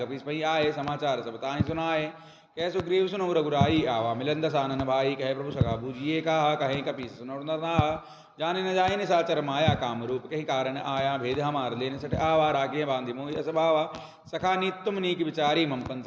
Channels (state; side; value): identical; both; correlation 1.00